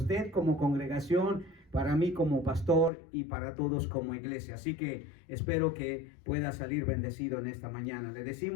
como congregación, para mí como pastor y para todos como iglesia. Así que espero que pueda salir bendecido en esta mañana. Le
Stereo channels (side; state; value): right; drops out; at 2.9 s